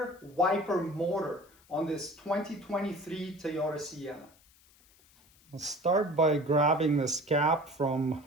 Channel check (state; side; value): noise; left; hiss, 29 dB below the sound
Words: wiper motor on this 2023 Toyota Sienna. I'll start by grabbing this cap from